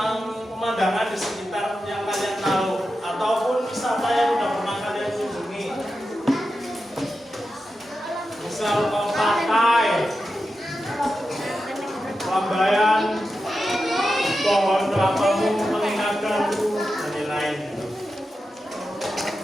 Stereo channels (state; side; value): normal; both; correlation 0.90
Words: pemandangan di sekitar yang kalian tahu ataupun wisata yang udah pernah kalian kunjungi. Misal ke pantai, Lambayan, pohon kelapa-mu mengingatkanku dan lain-lain.